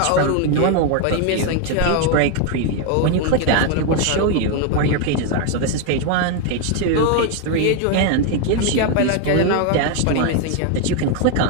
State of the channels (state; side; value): different; both; correlation 0.01